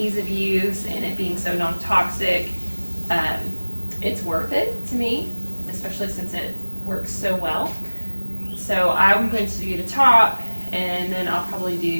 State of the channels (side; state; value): both; inverted; correlation -1.00